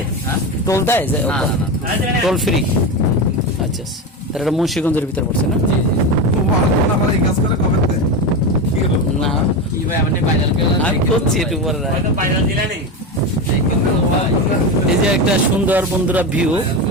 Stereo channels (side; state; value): both; normal; correlation 0.18